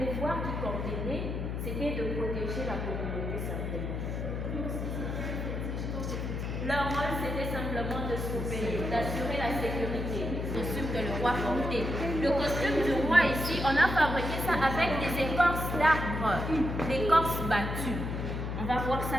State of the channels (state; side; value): noise; left; hum, 3 dB below the sound